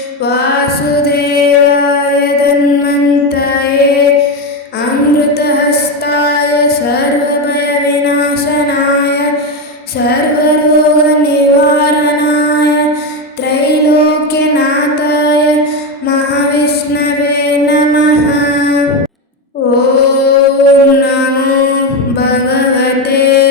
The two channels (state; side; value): normal; both; correlation 0.12